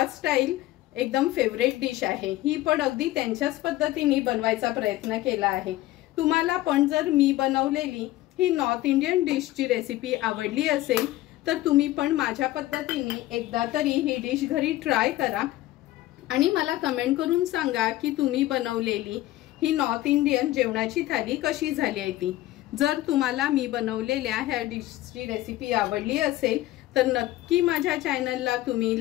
स्टाईल एकदम फेवरेट डिश आहे। ही पण अगदी त्यांच्याच पद्धतीने बनवायचा प्रयत्न केला आहे। तुम्हाला पण जर मी बनवलेली ही नॉर्थ इंडियन डिशची रेसिपी आवडली असेल तर तुम्ही पण माझ्या पद्धतीने एकदा तरी ही डिश घरी ट्राय करा आणि मला कमेंट करून सांगा की तुम्ही बनवलेली ही नॉर्थ इंडियन जेवणाची थाली कशी झाली आहे ती। जर तुम्हाला मी बनवलेल्या ह्या डिशची रेसिपी आवडली असेल तर नक्की माझ्या चॅनलला तुम्ही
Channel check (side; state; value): right; quieter; 16.1 dB